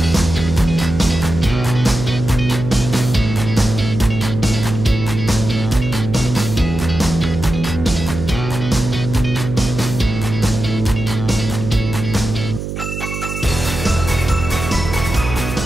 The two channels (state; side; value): noise; right; hum, 6 dB below the sound